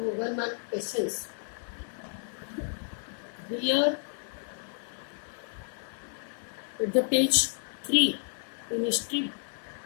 mark questions. Here at the page 3 in history,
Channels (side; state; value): right; silent; 57 dB below the other